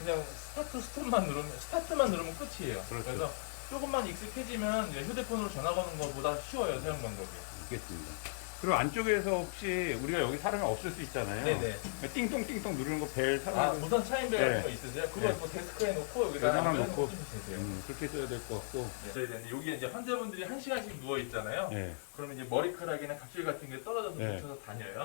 스타트만 누르면 끝이에요. 그렇죠. 래서 조금만 익숙해지면 이제 휴대폰으로 전화 거는 것보다 쉬워요, 사용 방법이. 알겠습니다. 그리고 안쪽에서 혹시 우리가 여기 사람이 없을 수 있잖아요. 네네. 띵동띵동 누르는 거 벨 아, 사람이 무선 차인벨 네. 같은 거 있으세요? 그거 네. 뭐 데스크에 놓고 여기다가 여기다가 놓고. 쓰시면 되세요. 그렇게 써야 될 것 같고. 네, 근데 여기 이제 환자분들이 1시간씩 누워 있잖아요. 네. 그러면 이제 머리카락이나 각질 같은 게 떨어져서 네. 묻혀서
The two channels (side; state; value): right; silent; digital silence